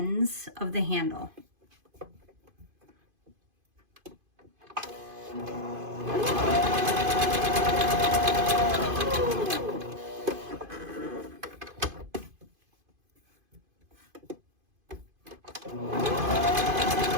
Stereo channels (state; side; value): late; left; 2.5 ms